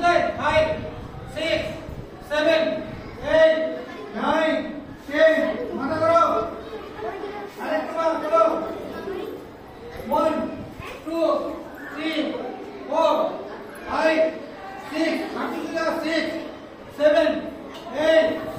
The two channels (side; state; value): both; identical; correlation 1.00